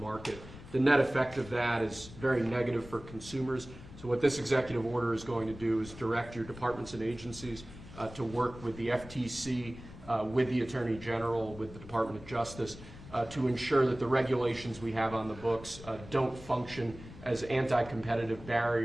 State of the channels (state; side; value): noise; left; rumble, 16 dB below the sound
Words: market. The net effect of that is very negative for consumers. So what this executive order is going to do is direct your departments and agencies to work with the FTC, with the Attorney General, with the Department of Justice, to ensure that the regulations we have on the books don't function as anti-competitive